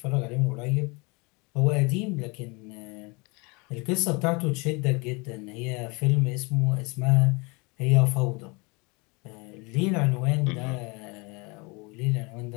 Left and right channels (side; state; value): right; quieter; 28.6 dB